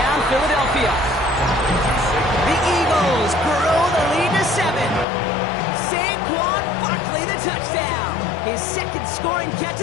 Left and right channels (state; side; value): drops out; right; at 5.1 s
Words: Philadelphia. The Eagles grow the lead to 7. Saquon Barkley the touchdown. His 2nd scoring catch